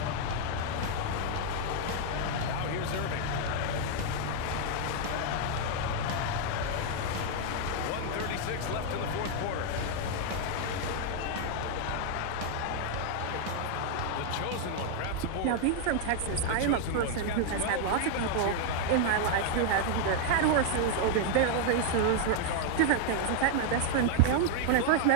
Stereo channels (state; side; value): different; both; correlation 0.00